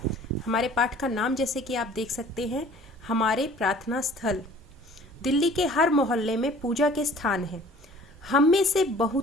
हमारे पाठ का नाम जैसे कि आप देख सकते हैं, हमारे प्रार्थना स्थल। दिल्ली के हर मोहल्ले में पूजा के स्थान हैं। हम में से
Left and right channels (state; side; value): normal; both; correlation 0.50